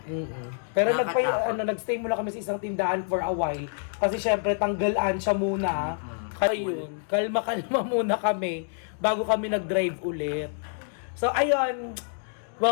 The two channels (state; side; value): silent; right; digital silence